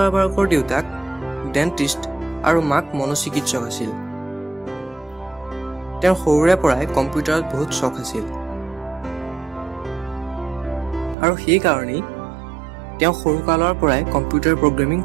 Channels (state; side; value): drops out; left; at 11.2 s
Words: দেউতাক ডেণ্টিষ্ট আৰু মাক মনোচিকিৎসক আছিল। তেওঁৰ সৰুৰে পৰাই কম্পিউটাৰত বহুত চখ আছিল আৰু সেইকাৰণেই তেওঁ সৰুকালৰ পৰাই কম্পিউটাৰ প্ৰগ্ৰেমিং